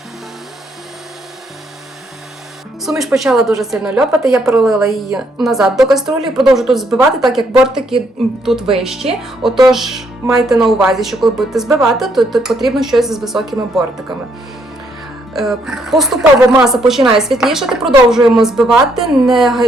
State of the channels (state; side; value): normal; both; correlation 0.72